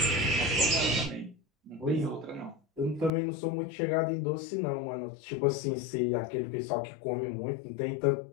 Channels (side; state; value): right; drops out; at 3.1 s